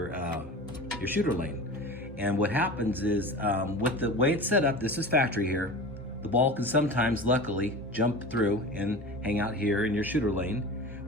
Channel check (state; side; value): normal; both; correlation 0.33